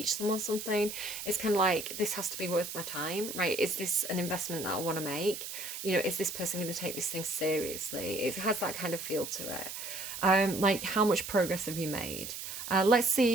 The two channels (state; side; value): noise; right; hiss, 8 dB below the sound